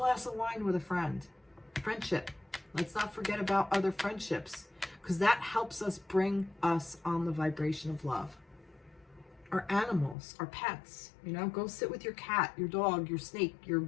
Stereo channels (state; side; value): drops out; right; at 10.2 s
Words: of wine with a friend, friendship. Let's not forget about other friendships, because that helps us bring us on the vibration of love. Our animals, our pets, you know, go sit with your cat, your dog, your snake, your